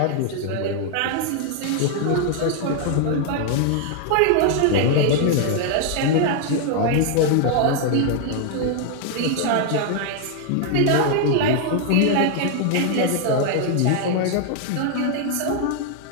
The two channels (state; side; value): different; both; correlation 0.00